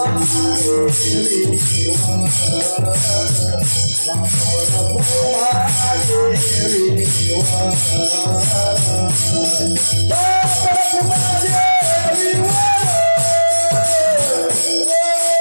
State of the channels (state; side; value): inverted; both; correlation -1.00